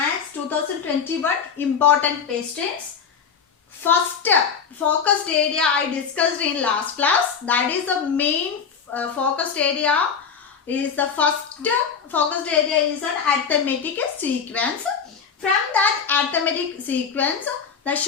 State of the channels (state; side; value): quieter; right; 6.4 dB